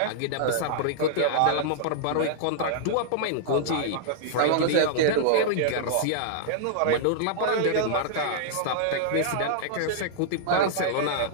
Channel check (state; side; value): different; both; correlation -0.01